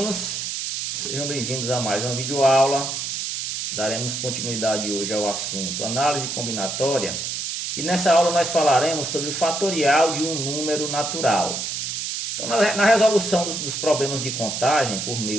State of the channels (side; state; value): right; noise; hiss, 4 dB below the sound